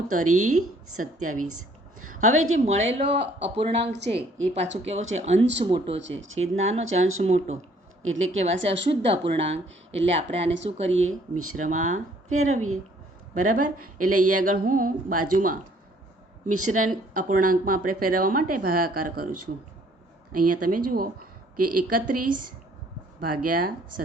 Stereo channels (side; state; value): both; normal; correlation 0.61